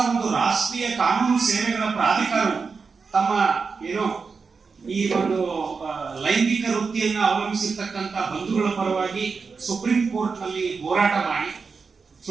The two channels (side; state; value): left; quieter; 5.0 dB